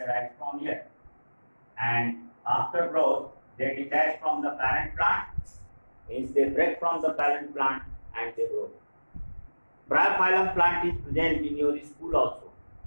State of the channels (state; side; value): inverted; both; correlation -1.00